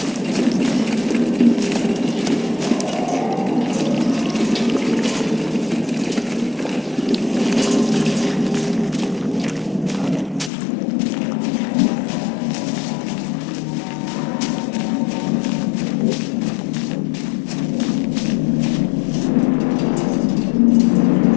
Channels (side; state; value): right; drops out; at 10.5 s